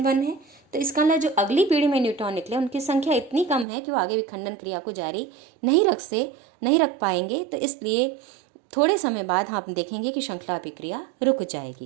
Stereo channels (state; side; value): drops out; left; at 3.7 s